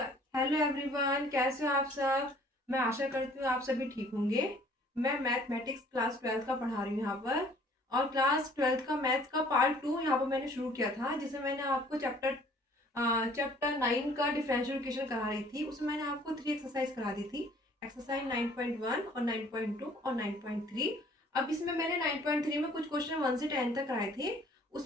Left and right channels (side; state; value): both; normal; correlation 0.56